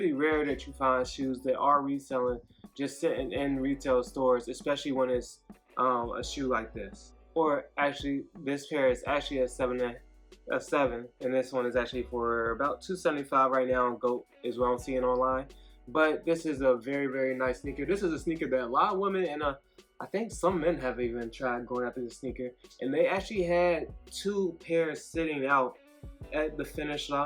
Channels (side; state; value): both; identical; correlation 1.00